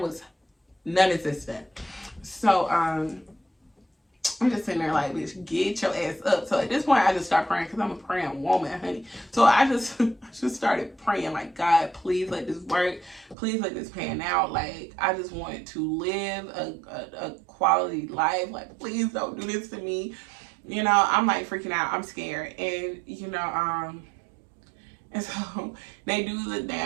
non-existent. So I'm just sitting there like, bitch, get your ass up. So at this point, I just start praying because I'm a praying woman, honey. So I just started praying like, God, please let this work. Please let this pan out. Like, I just want to live a quality life. Like, please don't do this to me. You know, I'm like freaking out. I'm scared. And, you know, and so they do the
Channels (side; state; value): left; drops out; at 13.4 s